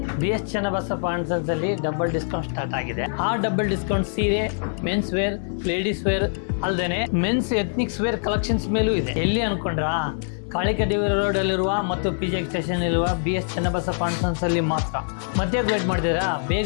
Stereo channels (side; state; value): right; silent; 59 dB below the other